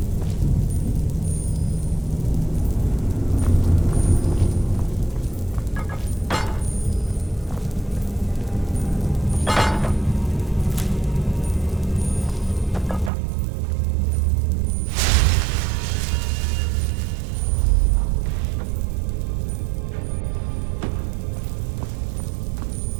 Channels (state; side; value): drops out; left; at 13.1 s